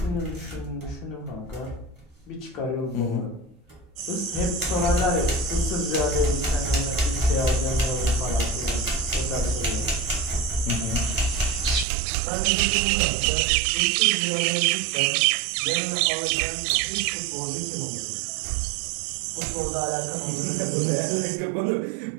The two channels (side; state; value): left; drops out; at 11.9 s